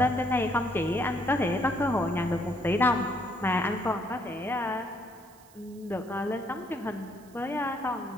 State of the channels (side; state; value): right; noise; hiss, 26 dB below the sound